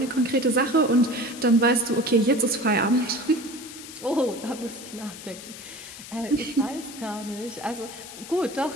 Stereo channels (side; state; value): left; noise; hiss, 13 dB below the sound